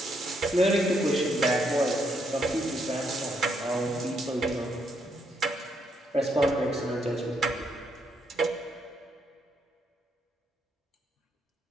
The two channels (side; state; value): both; normal; correlation 0.75